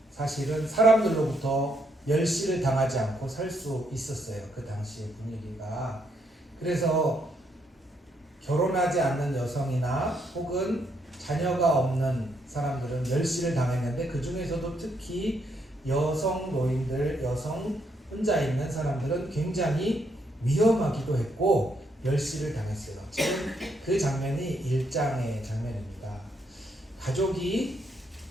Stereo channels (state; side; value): normal; both; correlation 0.75